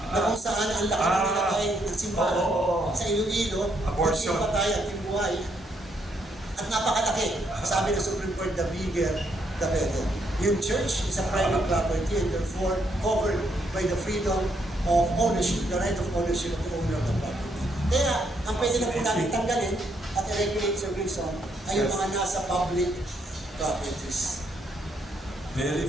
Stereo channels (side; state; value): both; normal; correlation 0.74